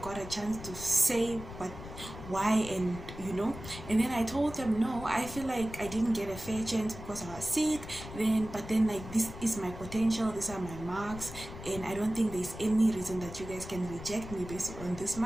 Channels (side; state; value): left; noise; rumble, 12 dB below the sound